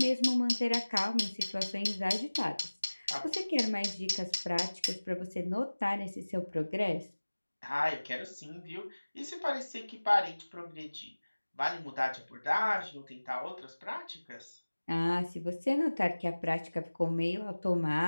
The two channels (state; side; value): inverted; both; correlation -1.00